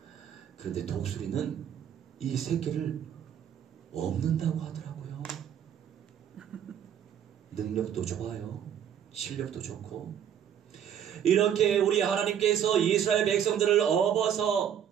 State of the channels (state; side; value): quieter; left; 9.2 dB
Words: 그런데 독수리는 이 새끼를 없는다고 하더라고요. 능력도 좋아요. 실력도 좋고. 이렇게 우리 하나님께서 이스라엘 백성들을 업어서